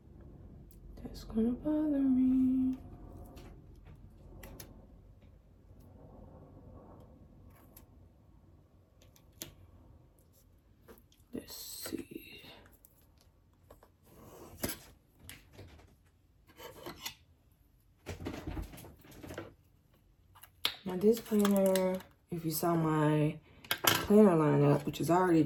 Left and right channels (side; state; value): both; identical; correlation 1.00